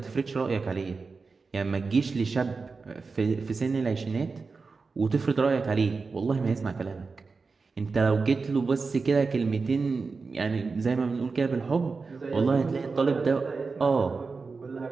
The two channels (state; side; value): quieter; left; 4.4 dB